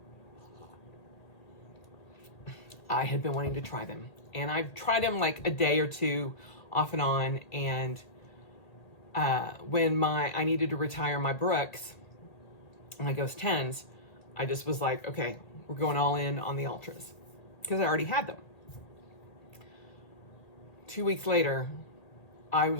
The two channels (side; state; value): right; late; 1.8 ms